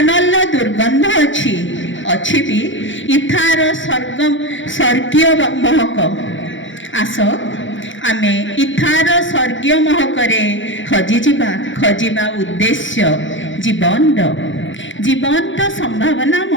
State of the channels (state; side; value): late; right; 0.56 ms